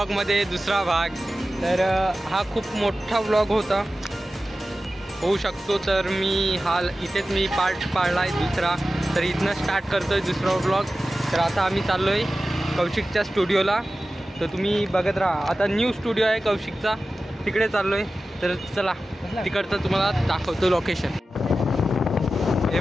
दुसरा भाग। तर हा खूप मोठा व्लॉग होता, होऊ शकतो, तर मी इथेच मी पार्ट पाडला आहे दुसरा। तर इथनं स्टार्ट करतो आहे दुसरा व्लॉग। तर आता आम्ही चाललो आहे कौशिकच्या स्टुडिओला. तर तुम्ही बघत राहा. आता न्यू स्टुडिओ आहे कौशिकचा, तिकडे चाललो आहे. तर चला तिकडचं तुम्हाला दाखवतो लोकेशन. हे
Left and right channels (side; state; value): both; normal; correlation 0.94